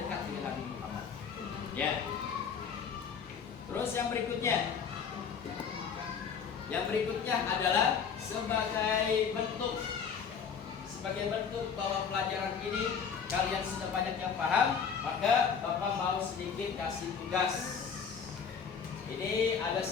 dengan Nabi Muhammad. Ya. Terus yang berikutnya adalah sebagai sebagai bentuk bahwa pelajaran ini kalian sudah banyak yang paham, maka Bapak mau sedikit kasih tugas. Ini ada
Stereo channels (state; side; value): quieter; right; 6.6 dB